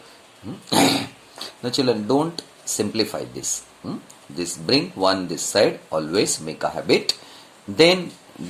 Now children, don't simplify this. This bring 1 this side, always make a habit. Then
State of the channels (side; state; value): both; identical; correlation 1.00